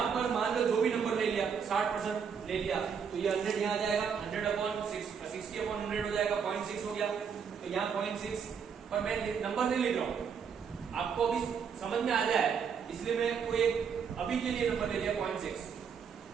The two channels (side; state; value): left; quieter; 6.7 dB